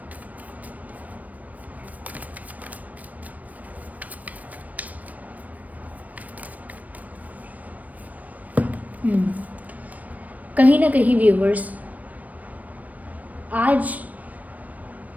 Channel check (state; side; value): late; left; 0.073 ms